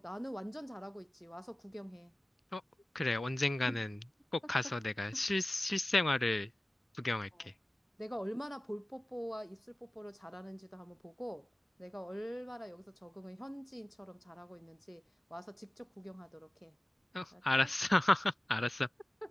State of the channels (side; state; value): both; normal; correlation 0.96